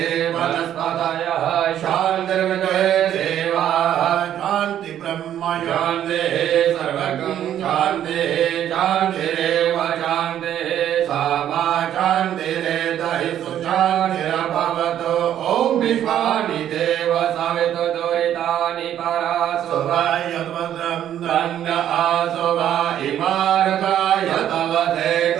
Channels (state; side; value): quieter; left; 10.8 dB